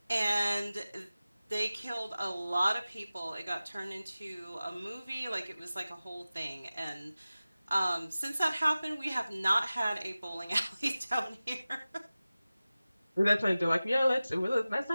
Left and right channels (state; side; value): inverted; both; correlation -0.97